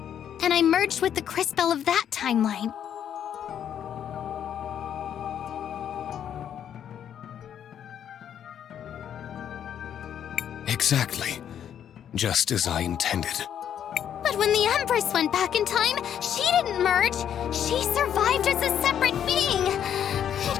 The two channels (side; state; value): right; quieter; 9.4 dB